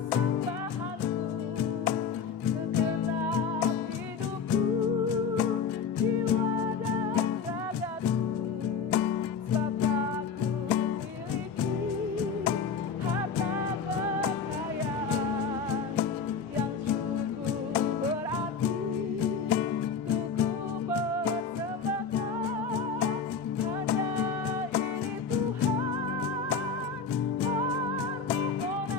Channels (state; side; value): quieter; right; 5.7 dB